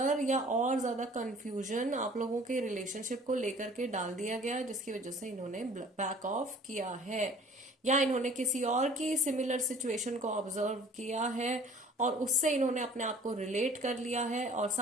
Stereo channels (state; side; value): normal; both; correlation 0.49